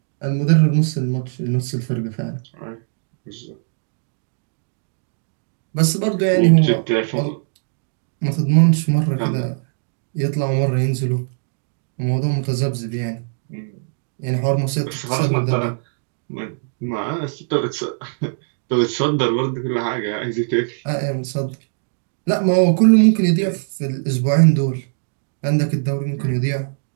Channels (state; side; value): silent; left; digital silence